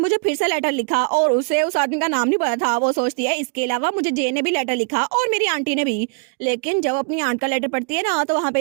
फिर से लेटर लिखा और उसे उस आदमी का नाम नहीं पता था। वो सोचती है इसके अलावा मुझे जे ने भी लेटर लिखा और मेरी आंटी ने भी। लेकिन जब अपनी आंट का लेटर पढ़ती है ना तो वहाँ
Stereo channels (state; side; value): quieter; left; 39.3 dB